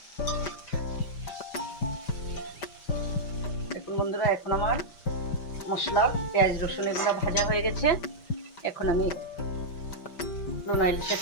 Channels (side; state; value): right; late; 5.1 ms